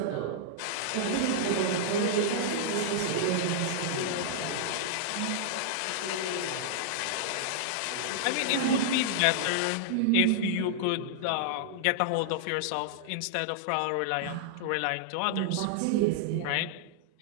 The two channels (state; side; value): different; both; correlation -0.01